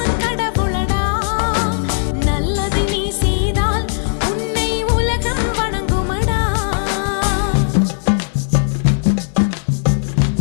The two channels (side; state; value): right; silent; digital silence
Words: கடவுளடா. நல்லதை நீ செய்தால் உன்னை உலகம் வணங்குமடா.